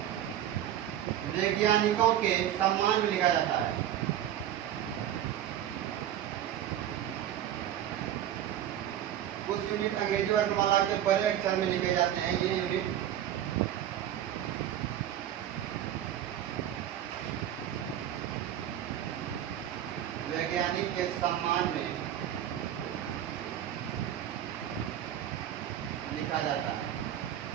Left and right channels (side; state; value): left; quieter; 11.2 dB